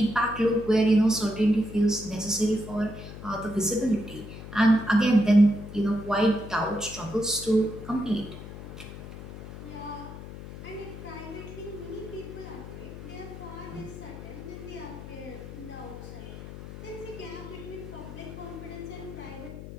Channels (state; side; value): noise; left; hum, 12 dB below the sound